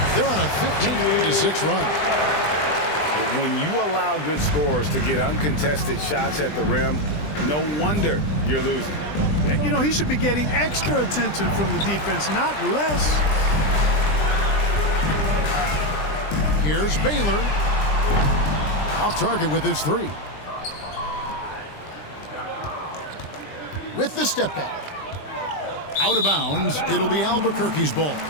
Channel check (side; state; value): right; late; 20 ms